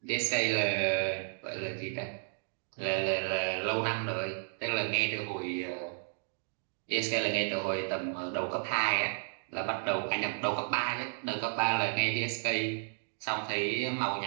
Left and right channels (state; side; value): silent; left; digital silence